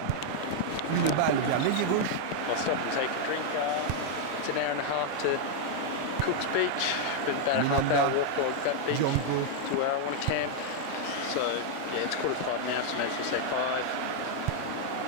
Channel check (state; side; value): different; both; correlation 0.00